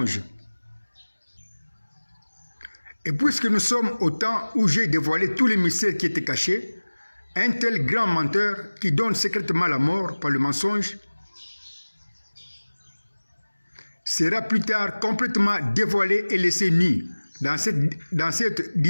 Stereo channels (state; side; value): inverted; both; correlation -1.00